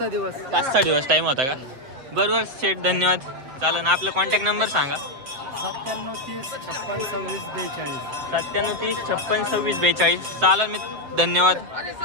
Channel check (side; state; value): left; late; 7.7 ms